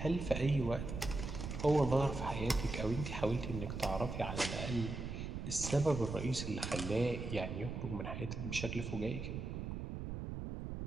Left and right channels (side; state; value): right; noise; rumble, 5 dB below the sound